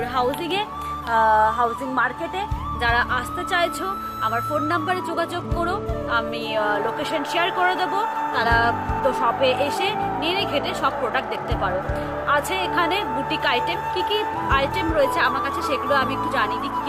হাউজিং মার্কেটে। যারা আসতে চাইছো আমার ফোন নাম্বারে যোগাযোগ করো, আমি লোকেশন শেয়ার করে দেবো। তারা তো শপে এসে নেড়ে ঘেটে সব প্রোডাক্ট দেখতে পারো। আছে এখানে বুটিক আইটেম, কি কি আইটেম রয়েছে আমার কাছে সেগুলো আমি একটু জানিয়ে দিই। কী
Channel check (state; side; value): identical; both; correlation 1.00